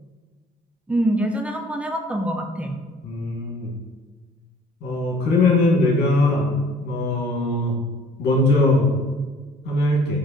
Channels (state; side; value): normal; both; correlation 0.54